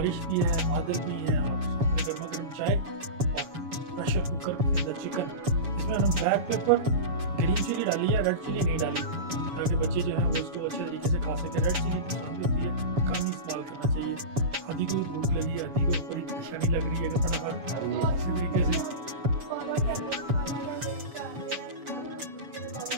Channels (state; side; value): late; left; 7.0 ms